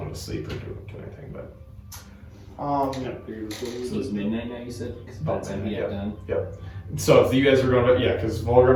to sleep or do anything, but So it's midnight now, you said? 'Cause by the time he got done. So if you guys were going to, because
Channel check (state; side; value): identical; both; correlation 1.00